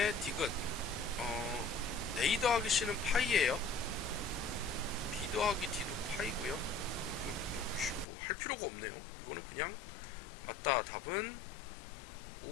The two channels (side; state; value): right; drops out; at 8.1 s